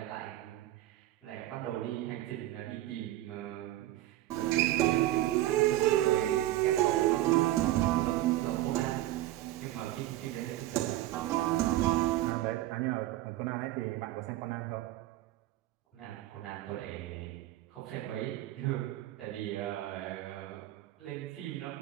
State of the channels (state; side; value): quieter; left; 15.3 dB